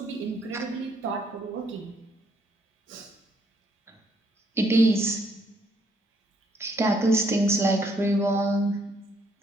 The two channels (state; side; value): normal; both; correlation 0.70